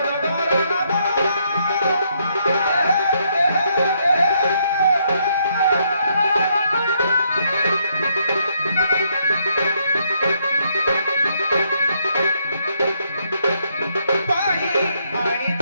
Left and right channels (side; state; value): both; inverted; correlation -0.73